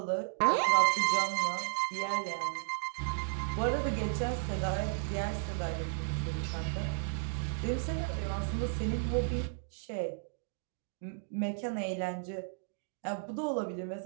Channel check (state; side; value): silent; left; digital silence